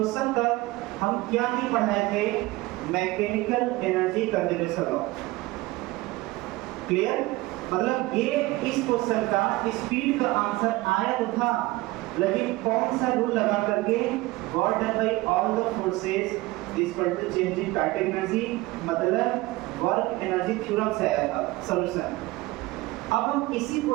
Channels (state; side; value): quieter; left; 20.2 dB